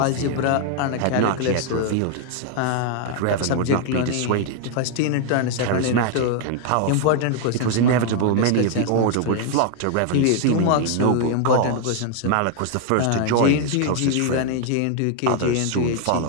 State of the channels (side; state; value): both; different; correlation 0.00